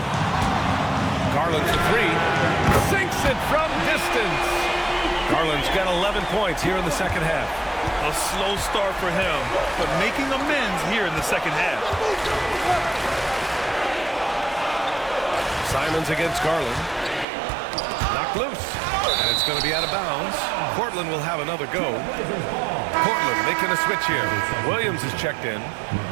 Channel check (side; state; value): left; drops out; at 17.2 s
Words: Garland for three. Sinks it from distance. Garland's got 11 points here in the second half. A slow start for him, but making amends here in the second half. Simons against Garland. Knocked loose. And it's going to be out of bounds. Portland will have another go. Portland making a switch here. Williams is checked in.